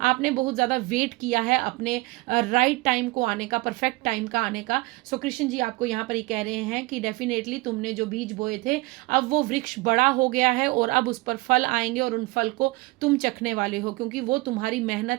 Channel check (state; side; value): quieter; left; 22.9 dB